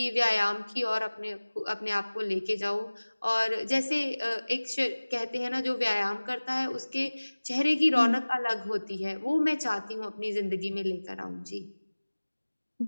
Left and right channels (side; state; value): both; inverted; correlation -1.00